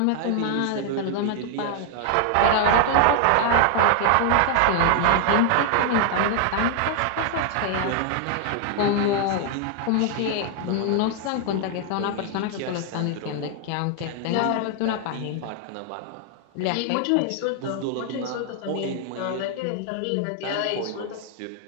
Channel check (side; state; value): both; different; correlation 0.00